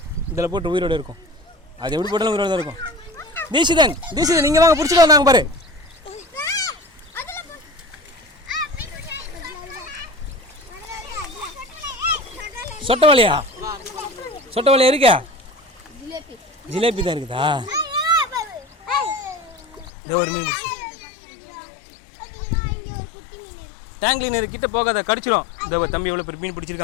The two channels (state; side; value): drops out; right; at 19.9 s